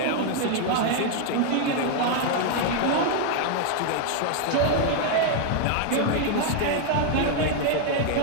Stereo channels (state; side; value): different; both; correlation 0.00